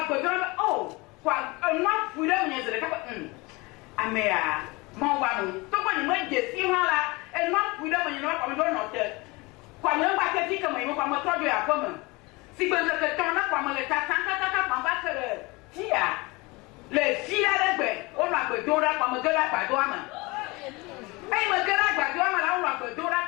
agbedura oh kwa nwa fure mo nyezere ka amea mo wa no to ko ni mo jesi hala nwa fure mo nyezere kwa mo do no te kwa mo ba ke dike mo kwa mo tojo ya ko mo si gbe ke to na kwa mo le ta kwa ba kere tia le fia legbe o no agbedura kwa mo gela gbado ama ai ma gela gbado ama la o no agbedura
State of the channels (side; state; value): right; quieter; 24.8 dB